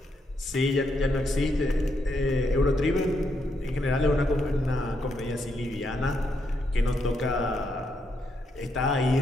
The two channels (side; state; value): both; normal; correlation 0.79